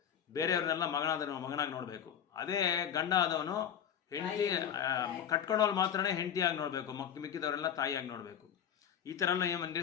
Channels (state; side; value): quieter; right; 8.8 dB